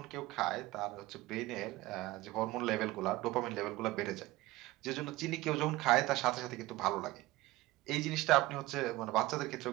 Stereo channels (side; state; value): left; quieter; 18.6 dB